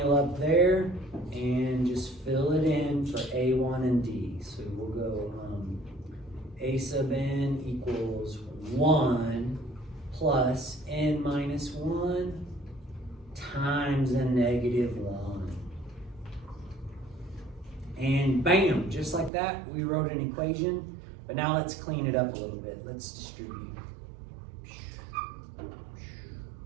up there and just fill it in for A1 and D. So we'll go A sub n equals 1 plus n minus 1 times a negative 1. And bam, just like that, we wrote an equation. But now let's clean it up a little bit. Let's distribute.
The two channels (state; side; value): drops out; left; at 19.3 s